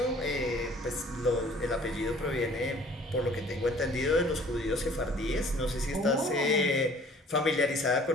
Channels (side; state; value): both; normal; correlation 0.53